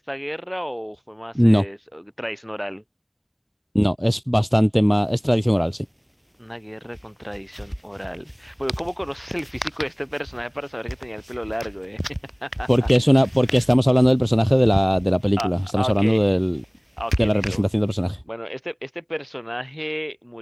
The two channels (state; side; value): identical; both; correlation 1.00